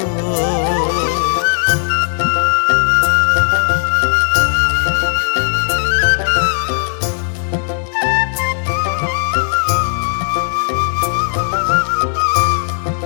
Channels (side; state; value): right; silent; digital silence